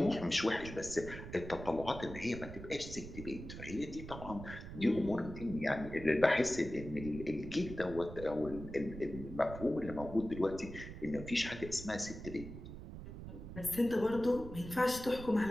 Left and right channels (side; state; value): right; noise; rumble, 11 dB below the sound